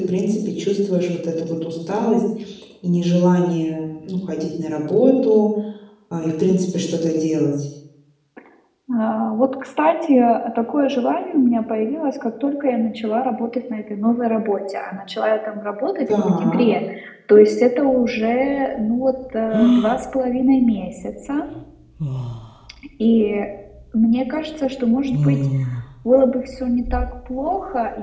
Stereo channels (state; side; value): identical; both; correlation 1.00